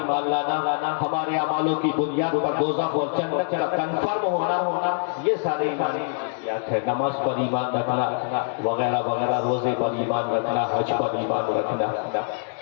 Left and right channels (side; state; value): right; silent; digital silence